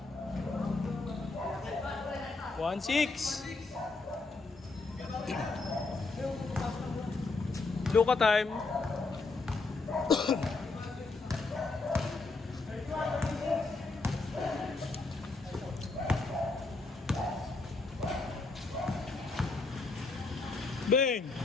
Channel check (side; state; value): right; quieter; 3.7 dB